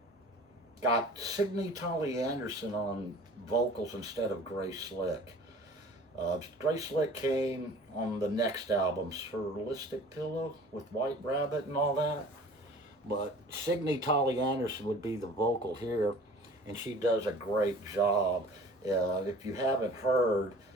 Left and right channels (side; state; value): both; normal; correlation 0.46